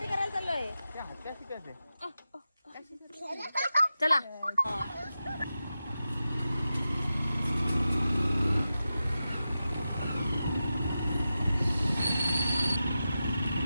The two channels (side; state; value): both; inverted; correlation -0.92